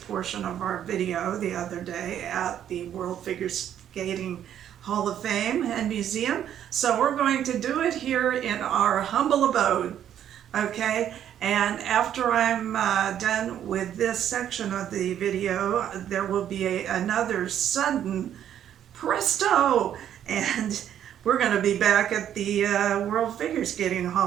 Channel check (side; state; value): left; quieter; 10.2 dB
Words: of our video the other day at the World Figure Skating Hall of Fame and Museum, so we're going to do it here in our humble abode, okay? And after I'm done with this section of the video, there will be another sudden presto, and we're going to be back at the World Figure Skating